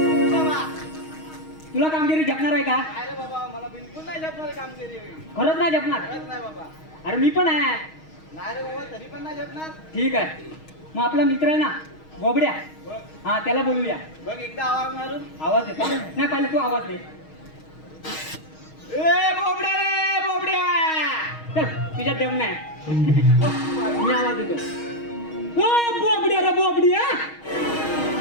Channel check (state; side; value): late; right; 6.4 ms